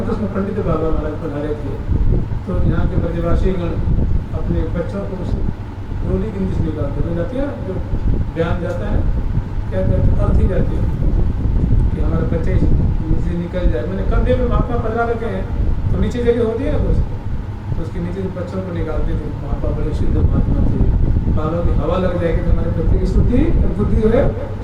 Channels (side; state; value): both; identical; correlation 1.00